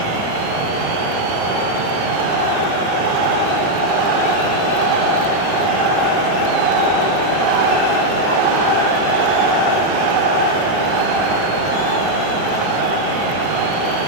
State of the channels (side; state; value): left; late; 20 ms